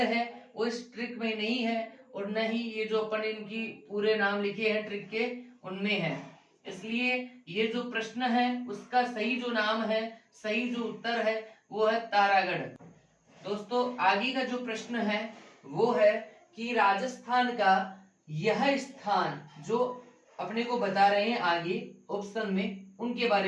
है वो इस ट्रिक में नहीं है और न ही ये जो अपन इनकी पूरे नाम लिखे हैं ट्रिक के उनमें है। इसलिए ये जो प्रश्न है उसका सही जो नाम है, सही जो उत्तर है वो है तारागढ़। दोस्तों आगे का जो प्रश्न है वो है कि राजस्थान का यह स्थान जो अपने को बता रहे हैं आगे ऑप्शन में, उनके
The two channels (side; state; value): both; identical; correlation 1.00